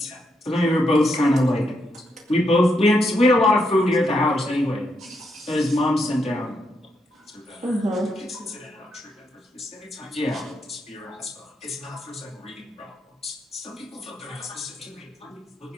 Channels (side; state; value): both; normal; correlation 0.80